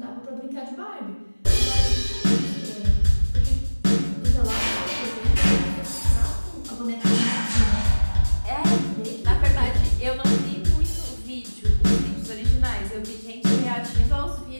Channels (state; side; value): inverted; both; correlation -1.00